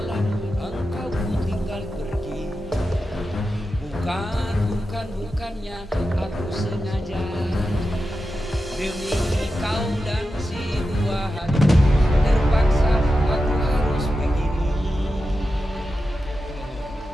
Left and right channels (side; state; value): both; normal; correlation 0.91